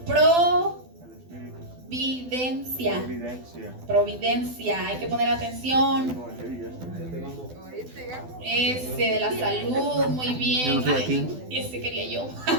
Providencia. Providencia. Hay que poner atención. Ese de la salud, muy bien. Yo no estoy aquí. Ese quería yo.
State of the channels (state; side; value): late; left; 12 ms